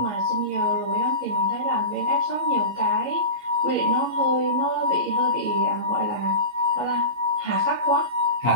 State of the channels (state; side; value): late; right; 13 ms